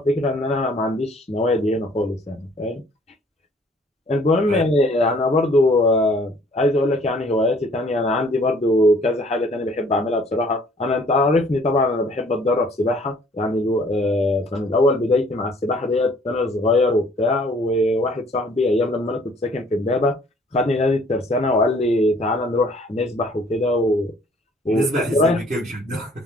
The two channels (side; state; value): both; normal; correlation 0.58